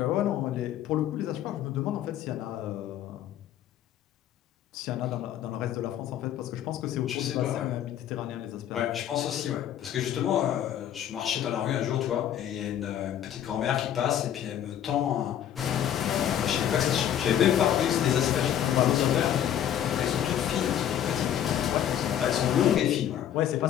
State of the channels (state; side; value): quieter; right; 10.5 dB